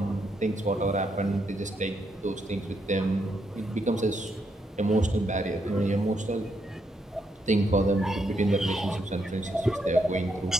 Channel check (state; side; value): normal; both; correlation 0.78